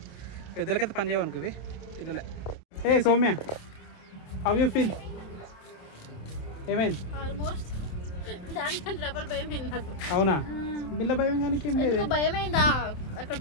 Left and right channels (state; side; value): late; right; 27 ms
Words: పెద్దలకైతే పని చేయవనుకో ఇవి, పిల్లలే. ఏ సౌమ్య, హౌ యూ ఫీల్? ఏమైంది? ఆల్మోస్ట్ దానికంటే డబల్ భయమైంది నాకు. అవునా? బిల్ల భయం కానీ భయమైందా? అక్కడ